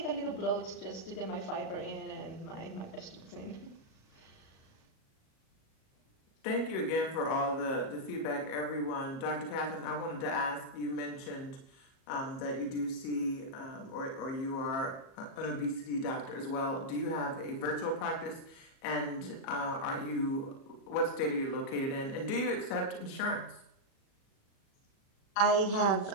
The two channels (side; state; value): right; late; 37 ms